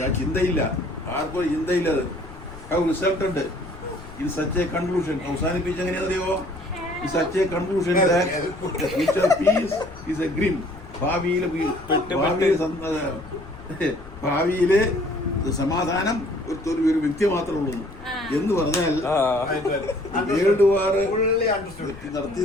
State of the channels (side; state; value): left; noise; rumble, 17 dB below the sound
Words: ചിന്തയില്ല, ആർക്കും ചിന്തയില്ല. അത് റിസൾട്ട് ഉണ്ട്. ഇത് സച്ച് എ കൺക്ലൂഷൻ. അവസാനിപ്പിച്ച് എങ്ങനെയാണെന്നറിയോ? ഇത് such a conclusion future peace is a grim. ഭാവിയിലെ സമാധാനം ഒരു വ്യക്തി മാത്രമേ ഉള്ളൂ എന്ന് പറഞ്ഞാൽ വേൾഡ് വാർ